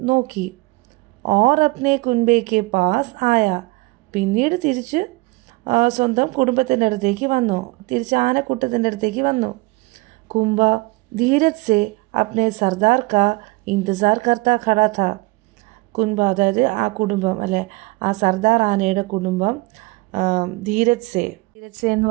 നോക്കി. ഓർ അപ്നെ കുൻബെ കെ പാസ് ആയ. പിന്നീട് തിരിച്ച് സ്വന്തം കുടുംബത്തിൻ്റെ അടുത്തേക്ക് വന്നു, തിരിച്ച് ആനക്കൂട്ടത്തിൻ്റെ അടുത്തേക്ക് വന്നു. കുംബ ധീരജ് സെ അപ്നെ സർദാർ കാ ഇന്തസാർ കർത്താ ഖടാ ഥാ. കുൻബ അതായത് ആ കുടുംബം, അല്ലെ ആ സർദാർ ആനയുടെ കുടുംബം ധീരജ് സെ എന്ന്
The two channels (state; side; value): quieter; left; 23.9 dB